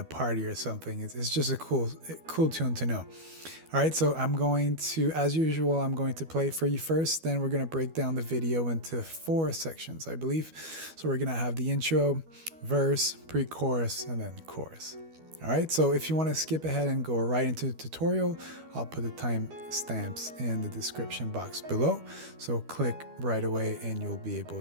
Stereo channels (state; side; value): late; left; 12 ms